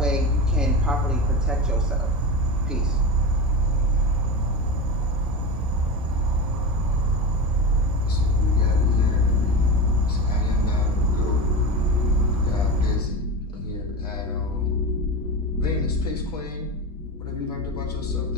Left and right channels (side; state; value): both; normal; correlation 0.23